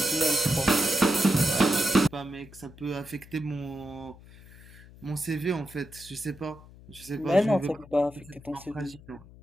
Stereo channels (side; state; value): left; noise; hum, 21 dB below the sound